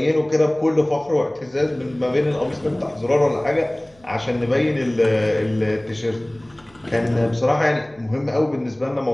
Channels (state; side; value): noise; right; hum, 30 dB below the sound